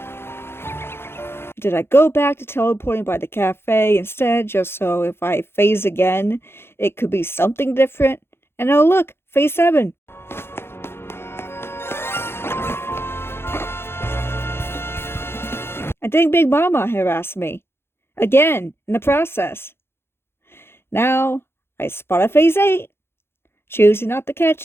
Did I go back to teleporting by the cafe instead, just so if I phase again, it could be something different? And oh look, Phase 7! I think Big Mama harassed me. Again, in the process. Now, I spot a Phase 8, choosing not to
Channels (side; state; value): right; late; 0.11 ms